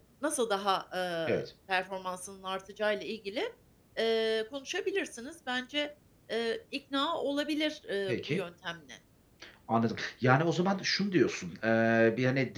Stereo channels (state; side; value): identical; both; correlation 1.00